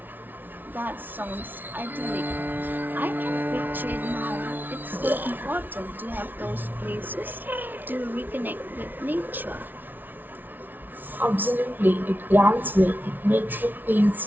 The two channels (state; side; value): late; left; 0.088 ms